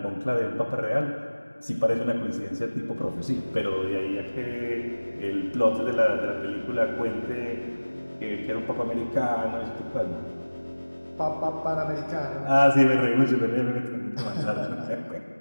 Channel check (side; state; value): both; inverted; correlation -1.00